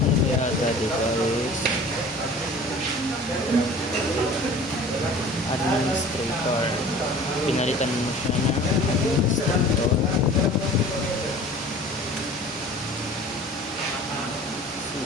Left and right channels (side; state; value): both; normal; correlation 0.44